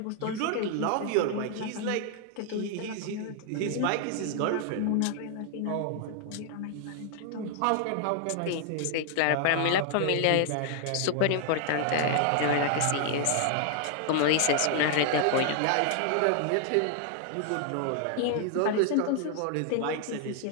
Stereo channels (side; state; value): both; different; correlation 0.00